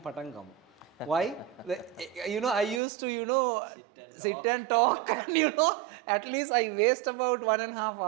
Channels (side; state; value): left; drops out; at 2.8 s